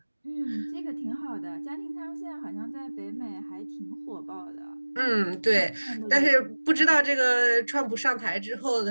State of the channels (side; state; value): both; inverted; correlation -1.00